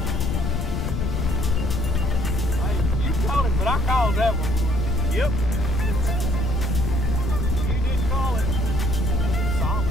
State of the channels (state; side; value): noise; left; rumble, 2 dB below the sound